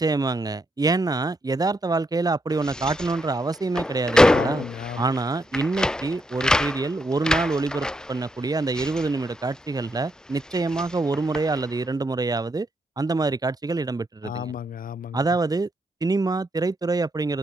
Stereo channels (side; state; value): both; normal; correlation 0.79